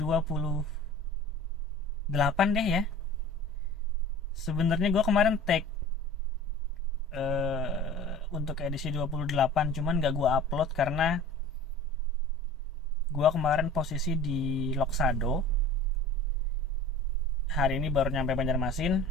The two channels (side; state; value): both; normal; correlation 0.42